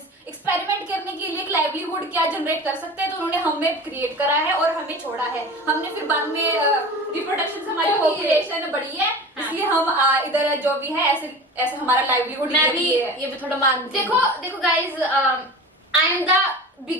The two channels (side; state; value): both; normal; correlation 0.35